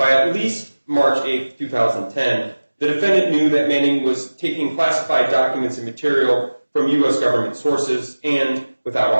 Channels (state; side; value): inverted; both; correlation -1.00